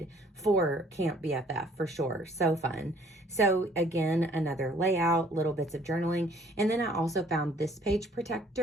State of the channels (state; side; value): normal; both; correlation 0.58